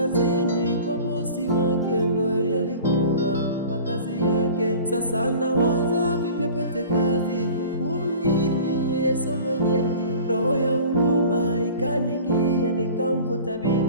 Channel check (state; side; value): inverted; both; correlation -0.42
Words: kwa bosi wake ndo yalikuwa makazi yake. Sasa anawaza vipi apate kazi huku mjini, yeye sio mwenyeji. Roho ya huruma ikaningia, nikamvuta